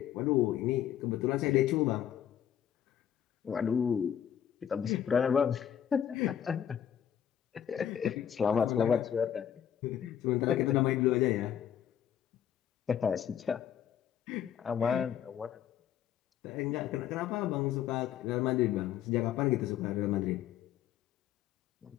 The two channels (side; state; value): right; quieter; 9.8 dB